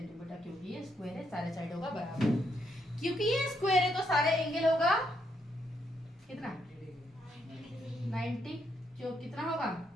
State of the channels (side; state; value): both; normal; correlation 0.76